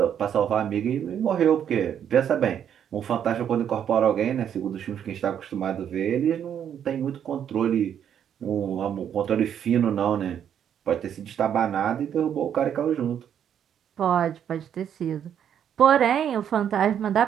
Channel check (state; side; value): quieter; left; 9.1 dB